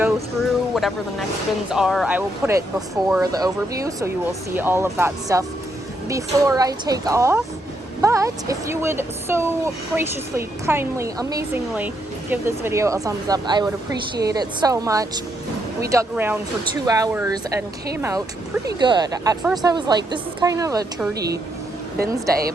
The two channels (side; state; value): both; normal; correlation 0.77